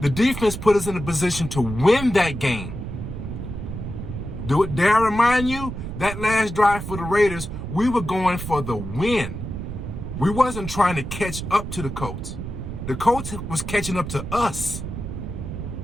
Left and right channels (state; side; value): noise; right; rumble, 7 dB below the sound